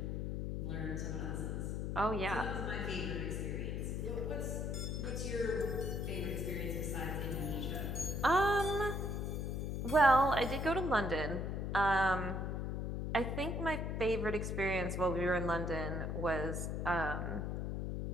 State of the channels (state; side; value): noise; left; hum, 2 dB below the sound